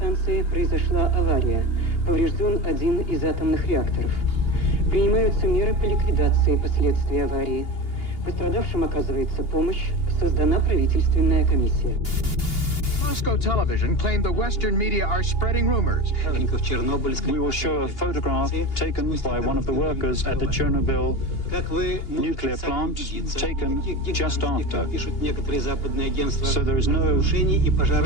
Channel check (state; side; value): late; right; 2.8 ms